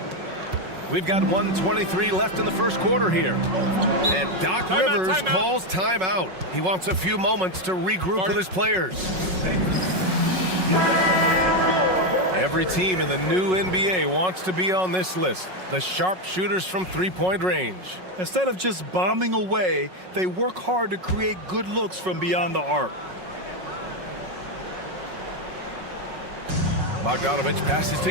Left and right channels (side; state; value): left; late; 5.4 ms